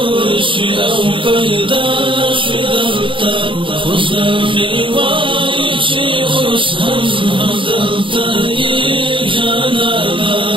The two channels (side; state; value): left; late; 0.25 ms